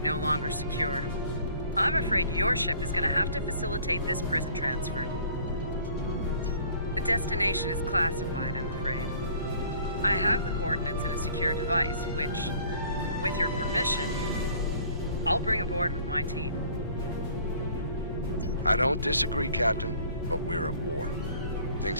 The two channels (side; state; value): both; inverted; correlation -0.53